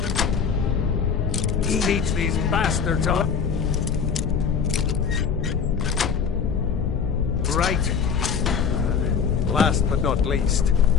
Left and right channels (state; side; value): quieter; right; 6.5 dB